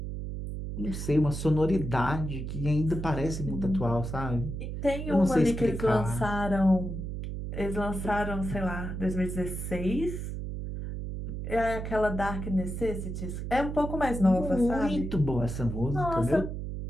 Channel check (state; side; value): noise; right; hum, 5 dB below the sound